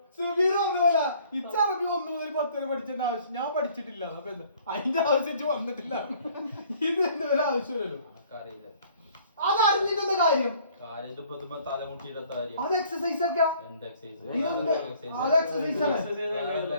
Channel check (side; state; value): both; inverted; correlation -0.57